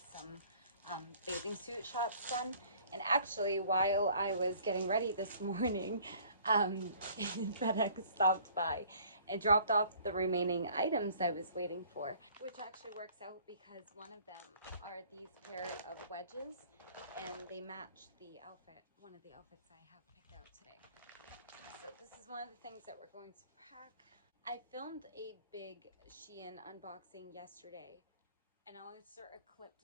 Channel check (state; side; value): inverted; both; correlation -0.54